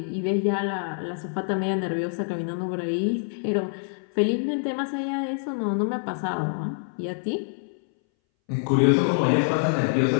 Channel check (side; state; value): right; silent; 61 dB below the other